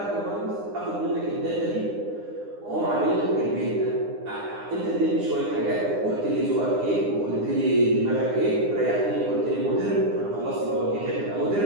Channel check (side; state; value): left; late; 9.8 ms